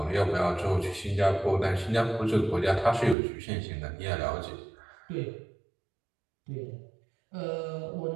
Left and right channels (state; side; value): drops out; left; at 3.2 s